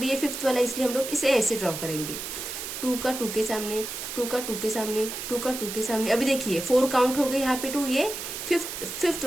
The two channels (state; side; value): noise; right; hiss, 7 dB below the sound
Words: ये 5th वाला, इसलिए हम लोग इसे ऐसे ड्रॉ करेंगे। 2 का 2 के सामने, 2 का 2 के सामने, 2 का 2 के सामने। अभी देखिए 4 काउंट हो गए यहाँ पे 2, ये 5th